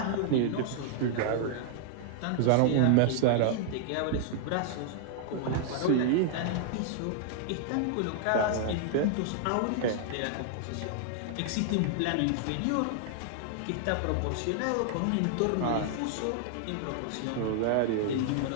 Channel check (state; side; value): different; both; correlation -0.01